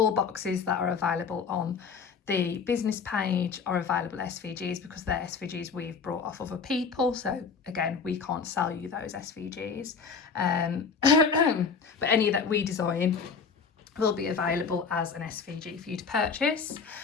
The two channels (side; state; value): right; quieter; 5.6 dB